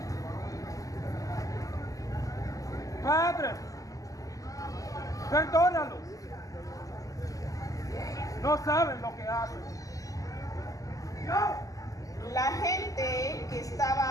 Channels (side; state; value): right; late; 0.17 ms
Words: Padre, perdónalos. No saben lo que hacen. La gente que